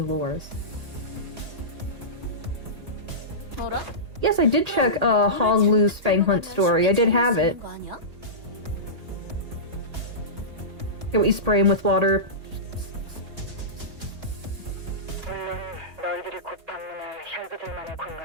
lores. 뭐라? Yes, I did check Hong Lu's Fang Hunt story. I did have it. Can we spray him with water? 물론 너희들이 곧 방문할 혈기들만의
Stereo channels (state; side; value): late; left; 1.8 ms